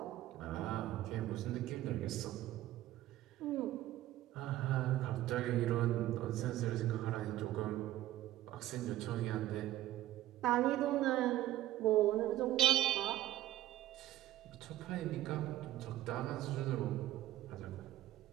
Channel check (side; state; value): left; quieter; 14.6 dB